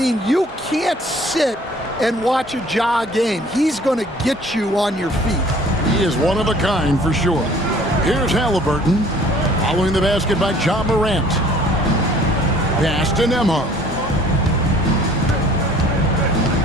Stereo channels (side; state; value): both; normal; correlation 0.53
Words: you can't sit and watch a Ja game. He's going to get you on your feet. He is one of a kind for sure. Here's Halliburton, following the basket by John Morant. Pass to Nembhard.